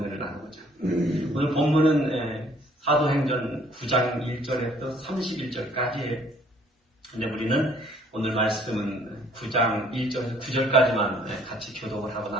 나누고자. 오늘 본문은 사도행전 9장 1절에서 31절까지예요. 근데 우리는 오늘 말씀은 9장 1절에서 9절까지만 같이 교독을 하고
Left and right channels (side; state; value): both; normal; correlation 0.60